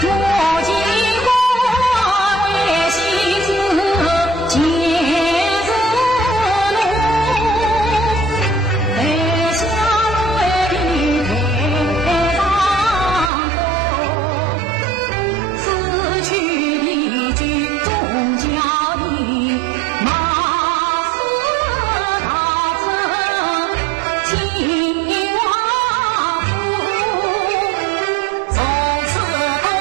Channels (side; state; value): left; drops out; at 13.3 s